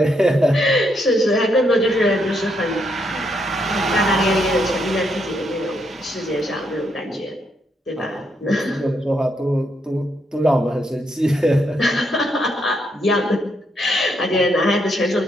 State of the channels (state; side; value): normal; both; correlation 0.77